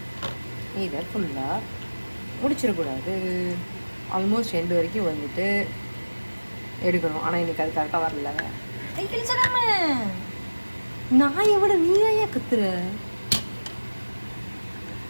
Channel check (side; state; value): both; inverted; correlation -1.00